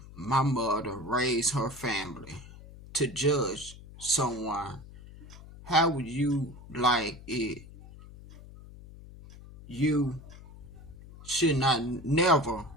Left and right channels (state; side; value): noise; left; hum, 18 dB below the sound